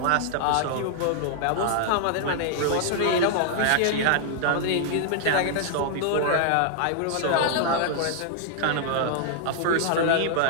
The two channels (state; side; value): different; both; correlation -0.01